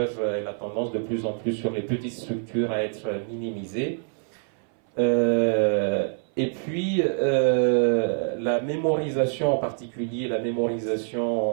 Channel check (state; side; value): silent; left; 61 dB below the other